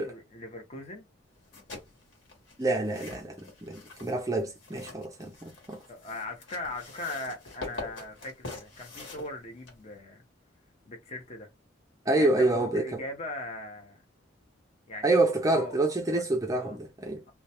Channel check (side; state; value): both; normal; correlation 0.58